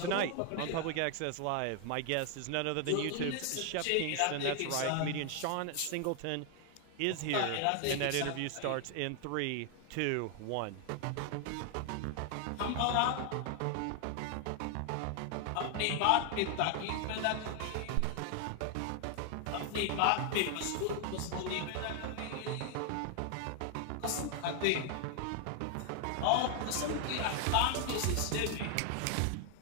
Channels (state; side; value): different; both; correlation 0.00